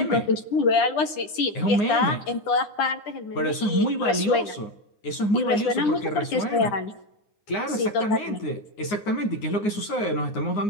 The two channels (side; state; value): right; late; 10 ms